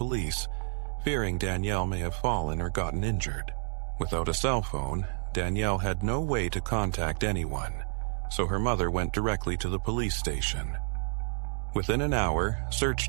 fearing Danielle may have fallen or gotten injured. Without a cell phone, Danielle had no way to contact anyone, so her mother went directly to the police station. Within an hour, search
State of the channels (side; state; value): left; silent; 58 dB below the other